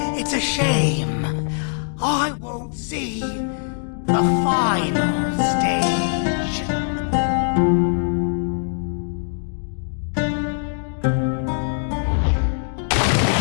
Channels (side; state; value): right; silent; digital silence